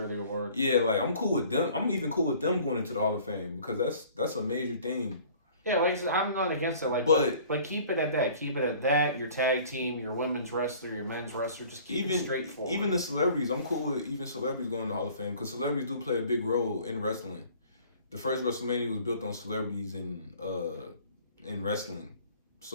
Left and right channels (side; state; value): both; inverted; correlation -0.50